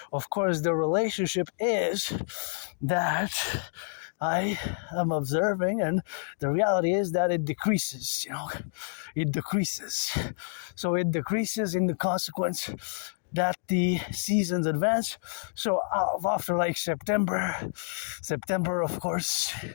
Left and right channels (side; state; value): right; silent; digital silence